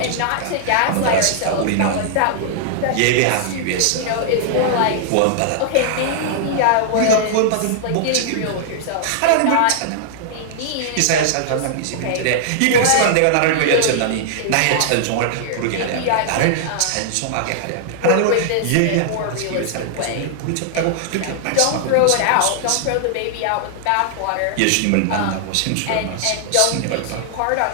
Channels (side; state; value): both; different; correlation -0.01